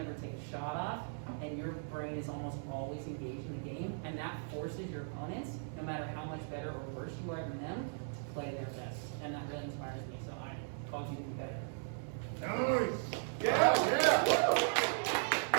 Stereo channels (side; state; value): left; silent; digital silence